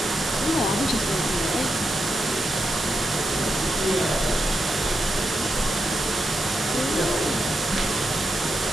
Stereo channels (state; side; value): normal; both; correlation 0.85